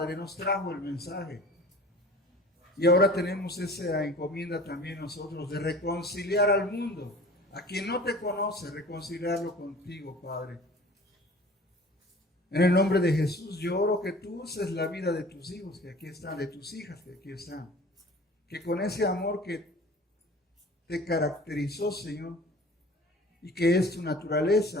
nos trajo el mensaje. Y ahora tenemos esa encomienda también nosotros de reconciliar al mundo, a quien no te conoce, reconciliarlo contigo, Padre. En el nombre de Jesús, yo oro que tú uses la vida de tus hijos que aquí están, de tus hijas que aquí están. Que con ese amor que te caracterizó, Señor, y que es tu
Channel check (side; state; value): both; normal; correlation 0.44